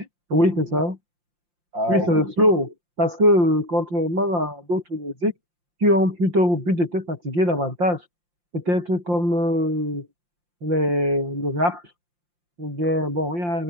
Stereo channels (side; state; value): left; late; 5.7 ms